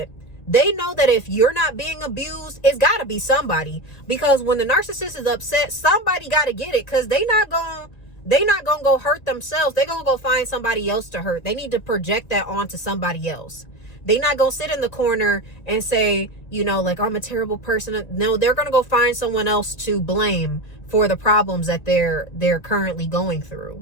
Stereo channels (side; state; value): right; late; 1.9 ms